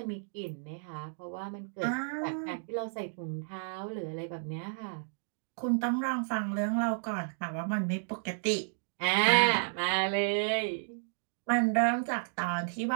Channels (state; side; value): silent; left; digital silence